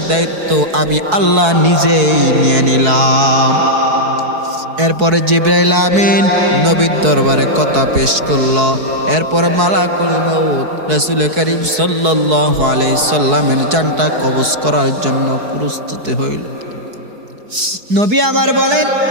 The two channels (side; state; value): left; late; 4.7 ms